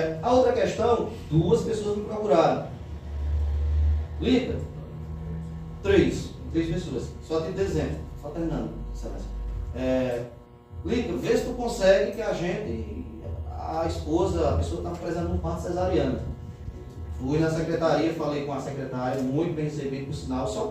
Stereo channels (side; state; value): both; identical; correlation 1.00